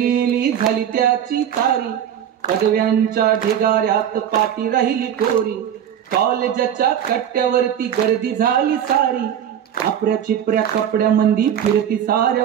झाली त्याची तारी, पदव्यांच्या ढिगाऱ्यात पाठी राहिली कोरी. कॉलेजच्या कट्ट्यावरती गर्दी झाली सारी, आपल्या चिपऱ्या कपड्यामंदी फिरती साऱ्या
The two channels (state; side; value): quieter; left; 9.5 dB